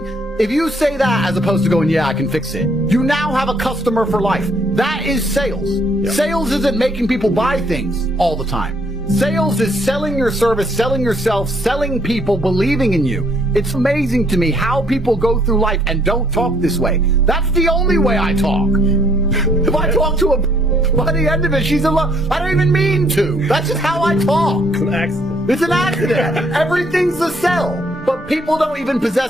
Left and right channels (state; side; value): normal; both; correlation 0.66